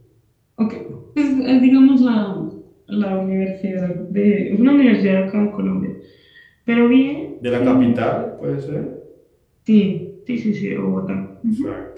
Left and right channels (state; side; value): identical; both; correlation 1.00